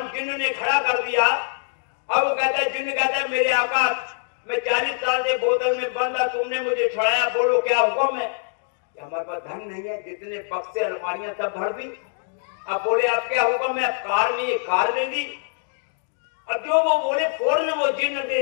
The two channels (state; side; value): silent; right; digital silence